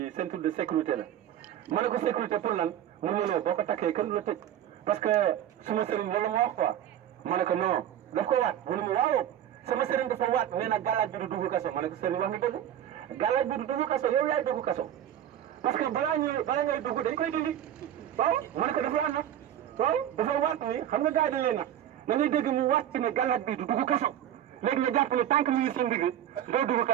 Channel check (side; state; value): left; quieter; 10.9 dB